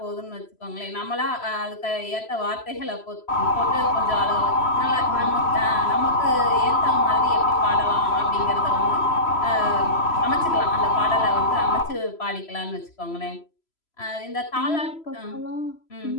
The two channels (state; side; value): late; right; 3.0 ms